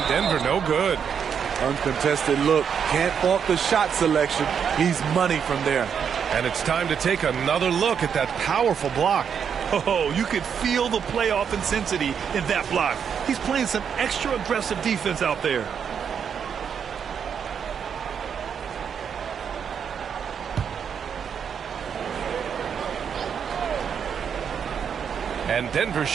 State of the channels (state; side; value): quieter; left; 7.4 dB